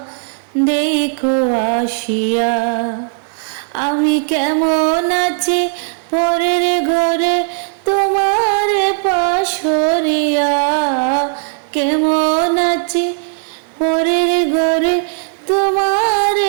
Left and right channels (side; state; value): left; silent; 63 dB below the other